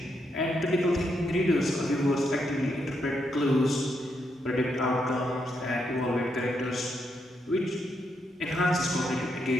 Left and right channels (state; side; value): normal; both; correlation 0.80